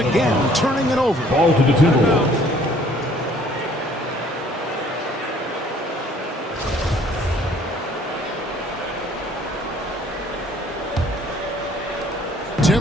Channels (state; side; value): normal; both; correlation 0.58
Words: turning it over. Ball to the Timberwolves.